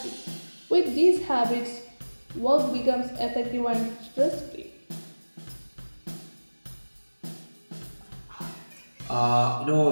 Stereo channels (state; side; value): inverted; both; correlation -1.00